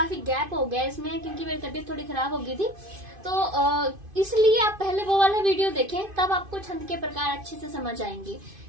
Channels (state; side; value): late; left; 2.5 ms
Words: गैप हो गया इसमें, क्योंकि मेरी तबीयत थोड़ी खराब हो गई थी, तो इसलिए आप पहले वो वाला वीडियो देखें, तब आपको छंद के प्रकार अच्छे से समझ आएंगे।